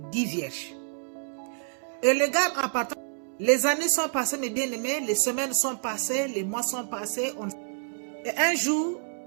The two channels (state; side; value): silent; left; 59 dB below the other